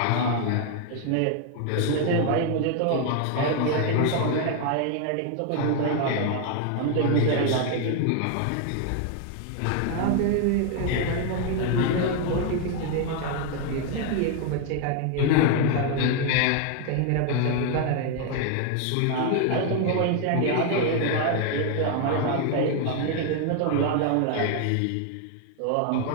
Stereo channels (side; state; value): both; different; correlation 0.01